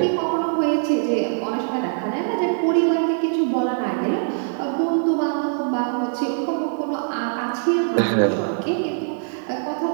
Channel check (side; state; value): left; silent; 56 dB below the other